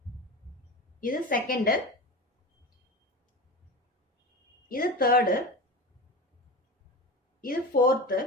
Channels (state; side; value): normal; both; correlation 0.28